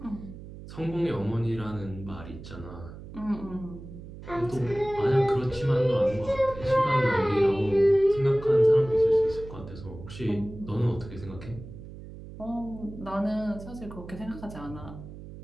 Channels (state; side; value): noise; right; hum, 14 dB below the sound